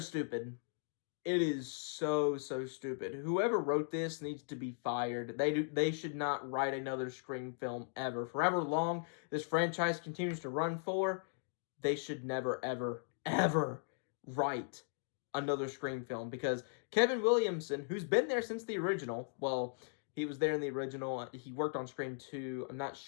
It is so, so stupid. Whoever wrote this needs to be fired. They should not write another Scream film ever. For however long this franchise continues to run for, they should never, ever, ever write another Scream film, because Kevin Williamson, who's been there since the original, well, he was there in the original. He worked on Scream 2. I'm not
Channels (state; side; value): silent; right; digital silence